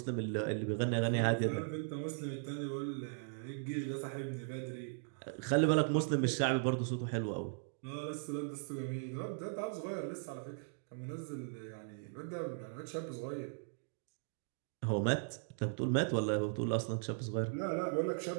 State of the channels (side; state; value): left; silent; digital silence